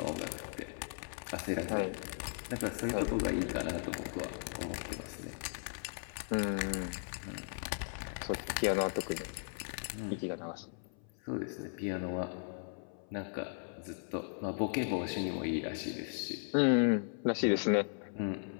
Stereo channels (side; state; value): right; silent; 53 dB below the other